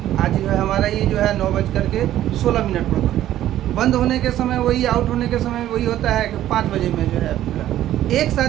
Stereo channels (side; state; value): left; quieter; 12.8 dB